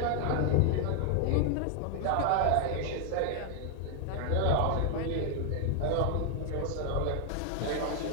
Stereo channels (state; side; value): different; both; correlation 0.00